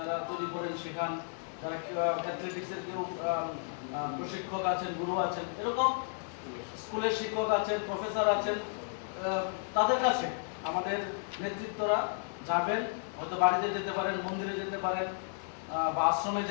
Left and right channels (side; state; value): right; silent; 56 dB below the other